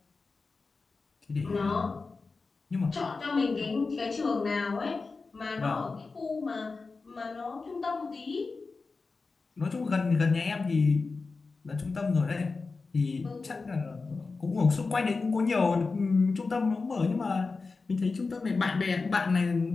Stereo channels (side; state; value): right; quieter; 4.1 dB